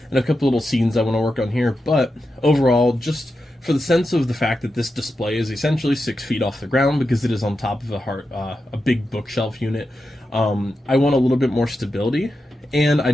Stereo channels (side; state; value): both; normal; correlation 0.89